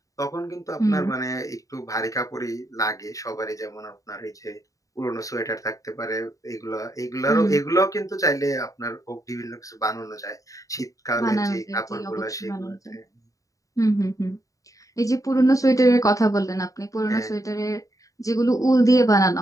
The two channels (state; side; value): late; right; 0.16 ms